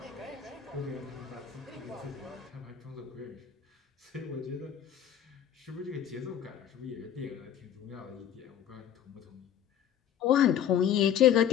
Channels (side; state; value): right; quieter; 9.7 dB